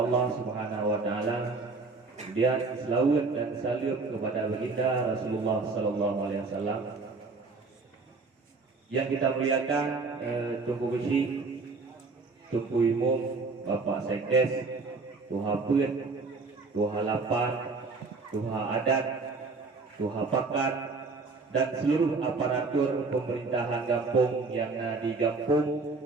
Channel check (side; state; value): left; quieter; 4.0 dB